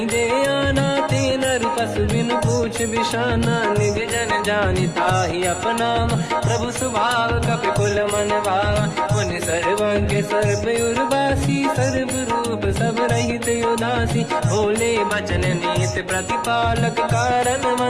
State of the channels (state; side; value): identical; both; correlation 1.00